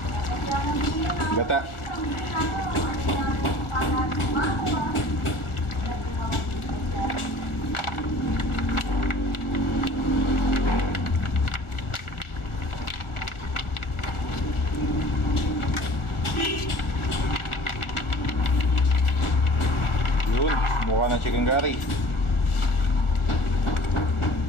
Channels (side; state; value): right; late; 1.4 ms